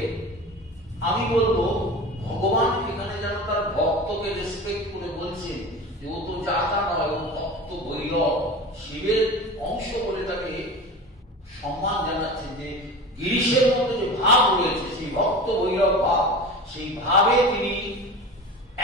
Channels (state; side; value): normal; both; correlation 0.32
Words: আমি বলবো ভগবান এখানে যেন তার ভক্তকে রেসপেক্ট করে বলছেন যে ও তো যাতা নয়, ও ভক্ত ভৈরব শিবের অংশ বলে তাকে সম্মান জানাচ্ছেন। যে গিরিশের মধ্যে যে ভাব রয়েছে, সেই ভক্ত ভৈরব ভাব, সেই ভাবে তিনি